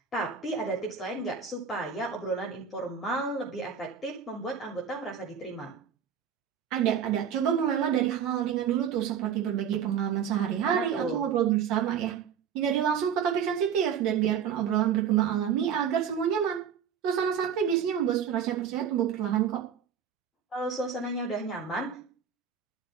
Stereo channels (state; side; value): quieter; left; 7.7 dB